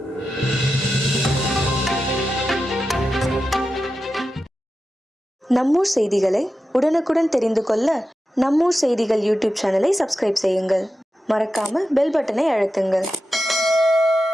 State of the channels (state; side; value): normal; both; correlation 0.91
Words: நம்மூர் செய்திகளை உடனுக்குடன் தெரிந்து கொள்ள நம்மூர் செய்திகள் யூடியூப் சேனலை சப்ஸ்கிரைப் செய்யுங்கள். மறக்காம பெல் பட்டனை அழுத்துங்கள்.